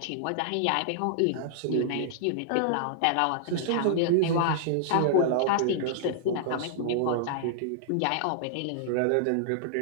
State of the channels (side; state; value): both; different; correlation -0.01